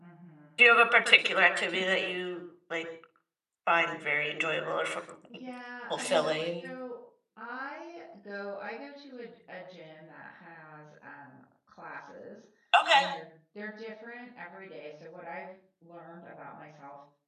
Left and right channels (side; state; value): both; identical; correlation 1.00